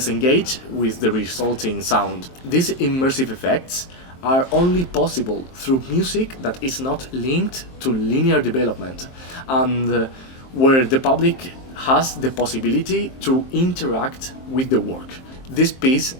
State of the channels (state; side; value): late; right; 23 ms